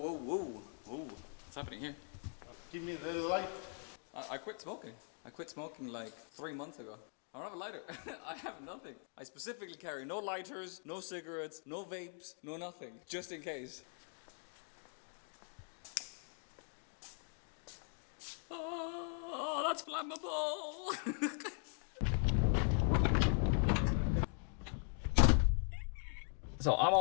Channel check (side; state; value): right; silent; 51 dB below the other